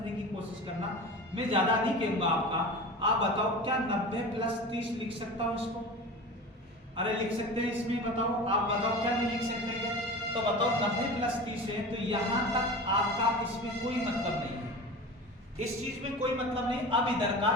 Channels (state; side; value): normal; both; correlation 0.33